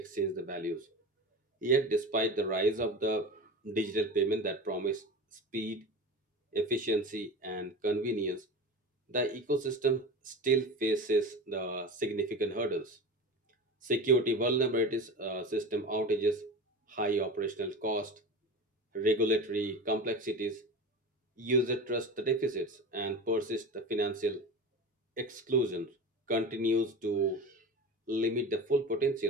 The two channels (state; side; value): normal; both; correlation 0.30